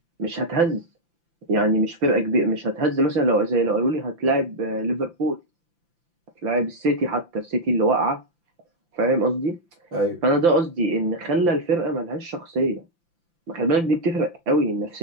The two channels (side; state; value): left; late; 5.9 ms